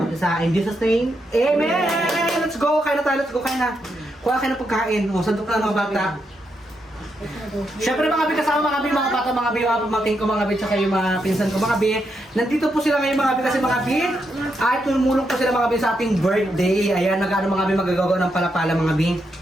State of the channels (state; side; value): normal; both; correlation 0.82